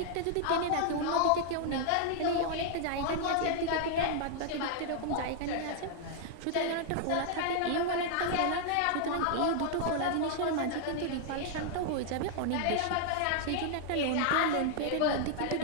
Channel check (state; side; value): different; both; correlation 0.00